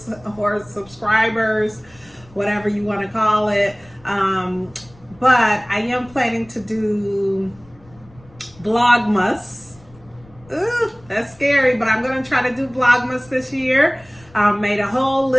or subscribers, whatever you want to call it. But I am planning to do Vlogmas. Ooh, that's scary, but I'm going to try to do Vlogmas this year. Made a whole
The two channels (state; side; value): noise; left; rumble, 26 dB below the sound